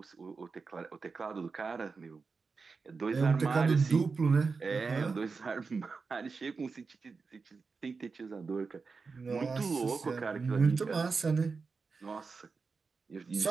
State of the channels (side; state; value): left; quieter; 4.7 dB